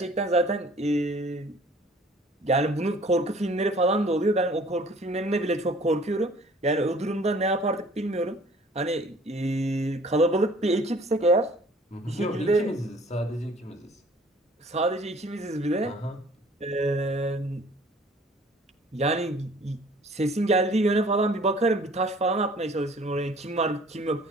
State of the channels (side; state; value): both; normal; correlation 0.53